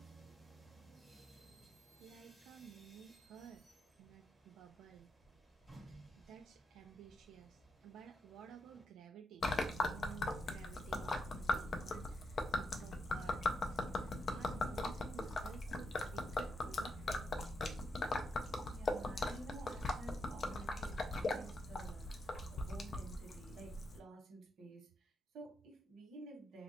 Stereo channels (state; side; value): normal; both; correlation 0.82